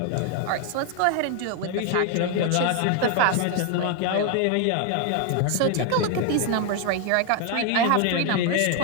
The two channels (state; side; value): different; both; correlation 0.01